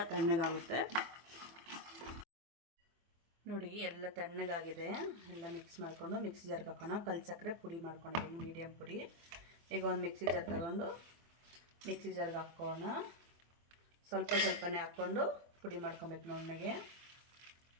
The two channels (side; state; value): left; late; 24 ms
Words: ತಣ್ಣಗಾಗುತ್ತೆ ನೋಡಿ. ಎಲ್ಲ ತಣ್ಣಗಾಗಿದೆ. ಎಲ್ಲ ಮಿಕ್ಸ್ ಮಾಡಿಕೊಂಡು ಮಿಕ್ಸಿ ಜಾರ್ಗೆ ಹಾಕೋಣ. ಕಲ್ ಸಕ್ಕರೆ ಪುಡಿ ಮಾಡ್ಕೊಂಡಿದ್ದೀನಿ, ಮೀಡಿಯಮ್ ಪುಡಿ. ಈಗ ಒಂದು ಮಿಕ್ಸಿ ಜಾರ್ ತಗೊಂಡು ಮಿಕ್ಸಿ ಜಾರ್ಗೆ ಹಾಕೋಣ. ಸ್ವಲ್ಪನೇ ಹಾಕ್ಕೊಂಡು ಪುಡಿ ಮಾಡ್ಕೊಬೇಕು ನುಣ್ಣಗೆ.